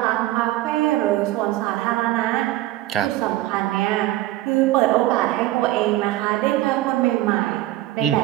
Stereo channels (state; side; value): quieter; left; 15.9 dB